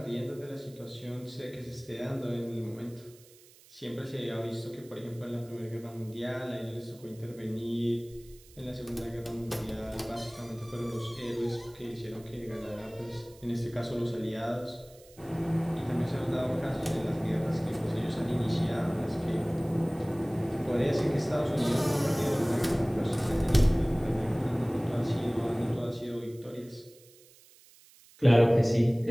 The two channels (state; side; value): noise; right; hiss, 25 dB below the sound